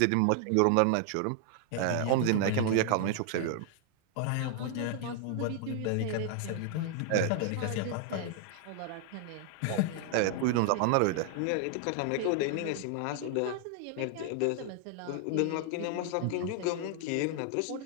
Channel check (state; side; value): different; both; correlation 0.00